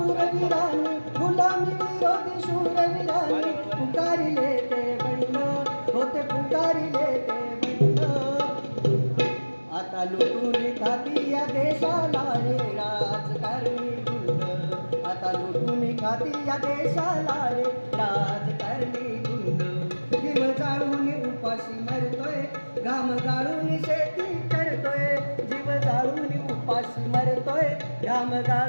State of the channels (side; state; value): both; inverted; correlation -1.00